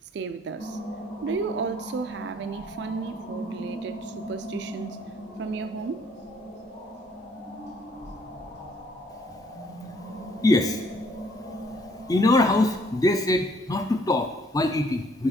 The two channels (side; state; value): both; normal; correlation 0.63